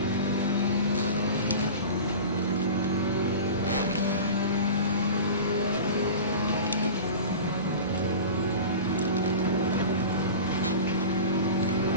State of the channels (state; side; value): inverted; both; correlation -0.34